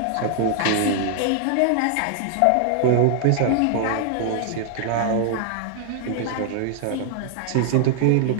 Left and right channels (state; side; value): different; both; correlation 0.00